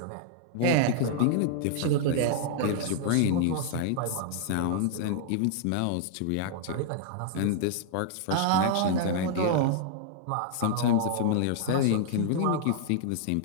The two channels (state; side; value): different; both; correlation -0.01